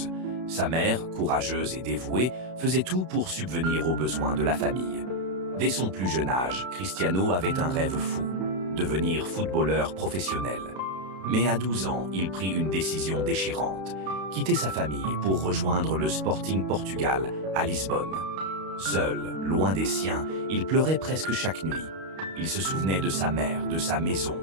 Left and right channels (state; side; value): late; left; 32 ms